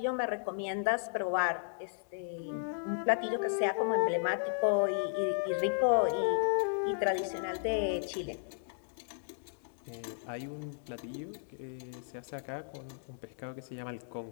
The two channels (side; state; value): right; silent; digital silence